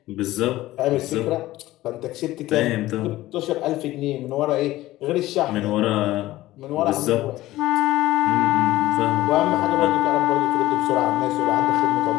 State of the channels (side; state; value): right; quieter; 16.5 dB